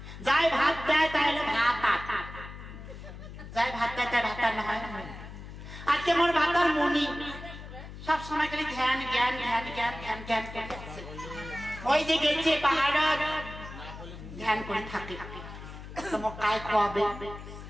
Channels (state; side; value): noise; left; hum, 13 dB below the sound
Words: যাই ভাত দেয় তাহলে ভাত যাই ভাত দেয় তাই ভাতার না হয় আজকে মোর ভাতার মনি সব সময় খালি ধ্যান ওই যে গেছে পাহাড় ধ্যান করে থাকে তোমার কায়